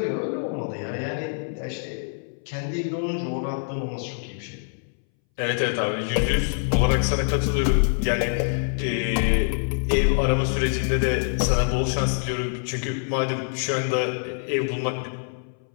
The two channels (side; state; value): right; silent; 62 dB below the other